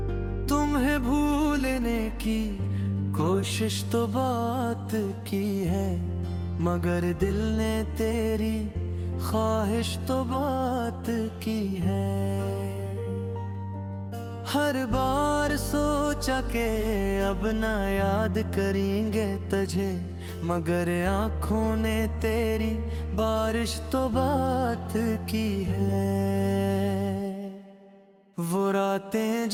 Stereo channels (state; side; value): identical; both; correlation 1.00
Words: तुम्हें भूलने की कोशिश तो बात की है, मगर दिल ने तेरी ख्वाहिश तो बात की है। हर बार सोचा के अब ना याद करेंगे तुझे, मगर आँखों ने तेरी बारिश तो बात की है। वो रातें